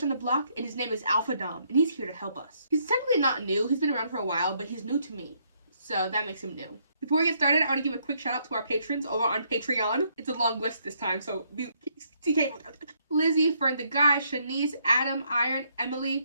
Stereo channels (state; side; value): inverted; both; correlation -0.72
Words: on the block, and his name is Alpha Dom, and he's here to help us. He's technically not new, he's been around for a while, but he's new to me, so that makes him new. Before we get started, I want to give a quick shout out to our patrons over on Patreon. It's a long list this time, so TK. Lizzie, Fern the Guy, Shanice, Adam, Iron,